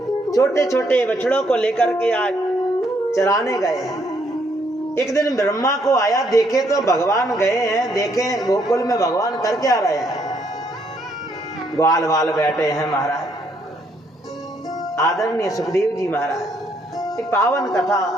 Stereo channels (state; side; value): normal; both; correlation 0.71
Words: छोटे छोटे बछड़ों को लेकर के आज चराने गए हैं। एक दिन ब्रह्मा को आया, देखे तो भगवान गए हैं, देखे गोकुल में भगवान करके आ रहे हैं। ग्वाल वाल बैठे हैं महाराज, आदरणीय सुखदेव जी महाराज ये पावन कथा